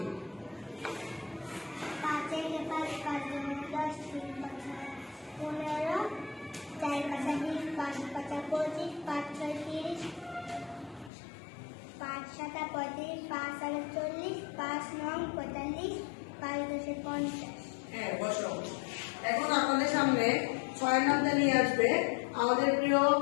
5 থেকে 5 5 10 3 15 4 5 20 5 5 25 5 6 30 5 7 35 5 7 40 5 9 45 5 10 50। হ্যাঁ, বসো। এখন আপনাদের সামনে 6 নামটা নিয়ে আসবে আমাদের প্রিয়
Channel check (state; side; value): drops out; right; at 11.1 s